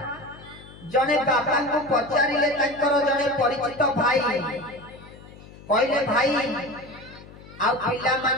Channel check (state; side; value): noise; left; hum, 19 dB below the sound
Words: जने बाबा को पचारिले तांकर जने परिचित भाई कहले भाई आ पिला